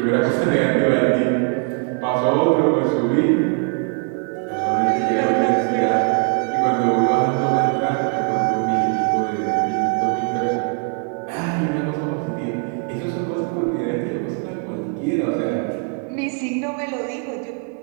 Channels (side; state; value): left; quieter; 38.4 dB